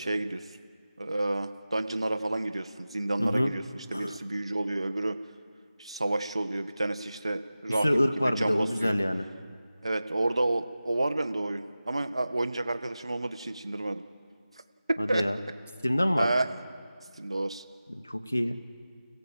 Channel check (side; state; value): both; inverted; correlation -0.95